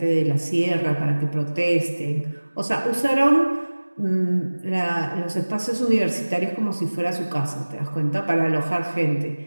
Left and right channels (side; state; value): both; inverted; correlation -1.00